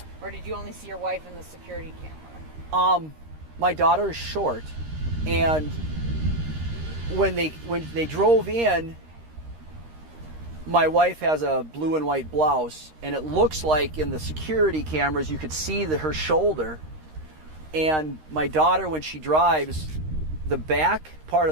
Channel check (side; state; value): left; late; 13 ms